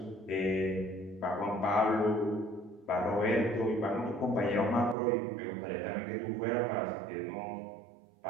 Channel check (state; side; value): drops out; left; at 5.0 s